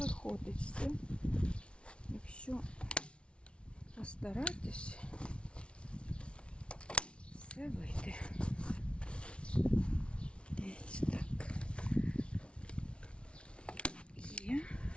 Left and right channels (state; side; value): late; right; 0.059 ms